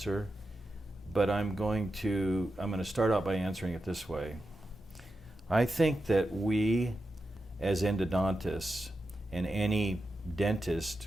but I'm going to start out by answering it this way. I think that we, as endodontists, and any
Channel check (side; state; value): both; normal; correlation 0.89